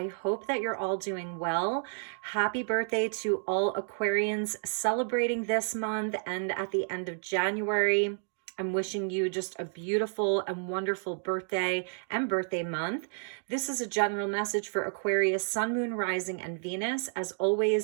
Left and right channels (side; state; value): left; silent; digital silence